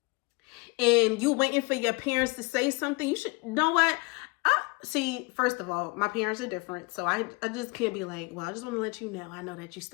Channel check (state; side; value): quieter; right; 27.5 dB